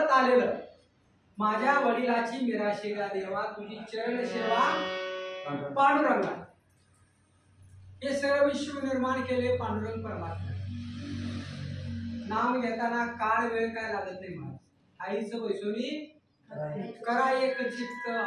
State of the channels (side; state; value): both; identical; correlation 1.00